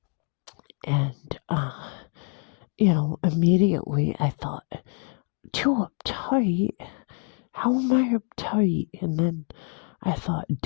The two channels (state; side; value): quieter; right; 39.3 dB